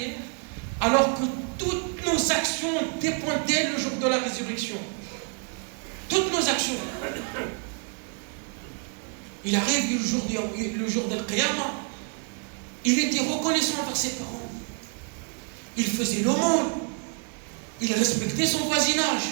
alors que toutes nos actions dépendaient le jour de la résurrection? Toutes nos actions. Il arrive le jour de l'Qiyamah, il était reconnaissant envers ses parents. Il faisait l'aumône. Il respectait son voisinage.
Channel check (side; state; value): left; quieter; 39.8 dB